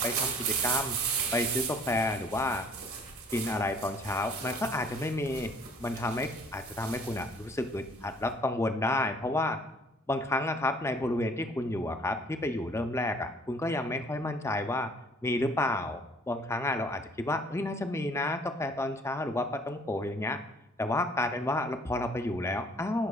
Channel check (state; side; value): normal; both; correlation 0.56